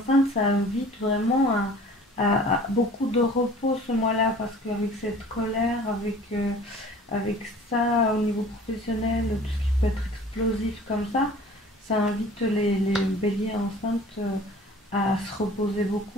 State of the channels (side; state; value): both; normal; correlation 0.47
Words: ça invite vraiment à beaucoup de repos ce mois-là, parce qu'avec cette colère, avec ça au niveau professionnel, tout ce qui peut être explosif comme ça invite les béliers enceintes à se reposer